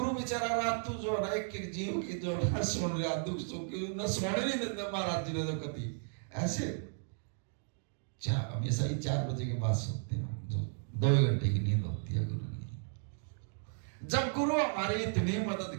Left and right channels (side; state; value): left; silent; digital silence